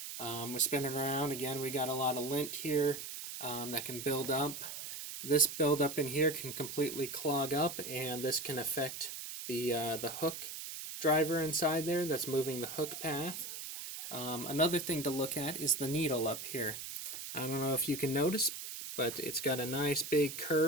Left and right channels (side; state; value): right; noise; hiss, 8 dB below the sound